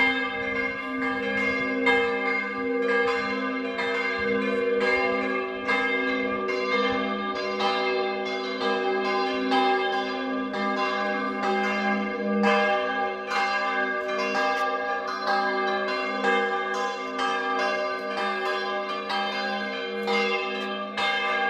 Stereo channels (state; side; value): identical; both; correlation 1.00